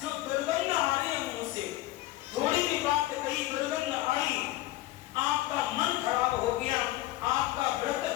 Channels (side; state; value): right; quieter; 17.0 dB